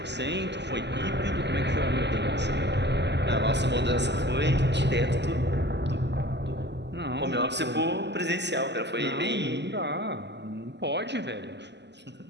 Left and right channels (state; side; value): late; left; 0.50 ms